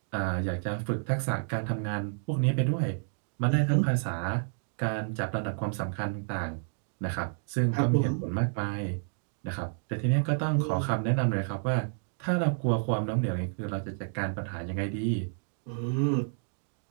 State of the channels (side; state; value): left; silent; digital silence